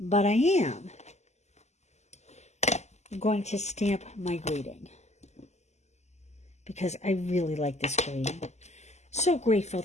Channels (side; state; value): right; late; 0.33 ms